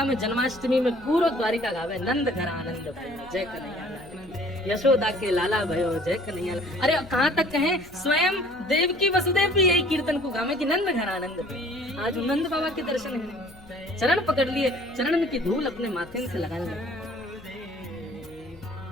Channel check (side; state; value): left; noise; hum, 24 dB below the sound